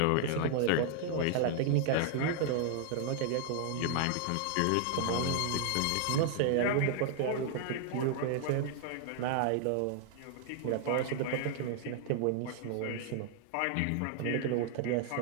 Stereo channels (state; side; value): different; both; correlation 0.00